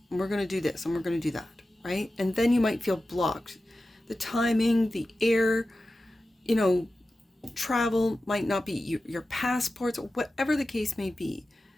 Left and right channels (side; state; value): both; normal; correlation 0.94